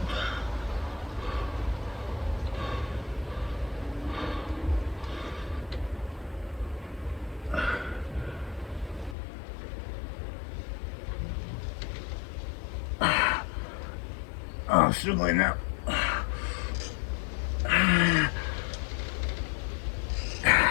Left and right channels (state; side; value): drops out; right; at 9.2 s